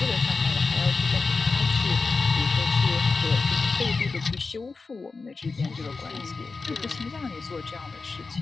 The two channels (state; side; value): quieter; right; 4.2 dB